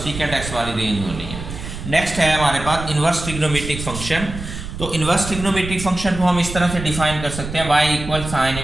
सीकेंट x वाली रेंज होनी है। नेक्स्ट है हमारे पास इन्वर्स ट्रिग्नोमेट्रिक फंक्शन। तो इन्वर्स ट्रिग्नोमेट्रिक फंक्शन को हम इस तरह से डिफाइन कर सकते हैं y equal sine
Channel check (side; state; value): right; noise; rumble, 9 dB below the sound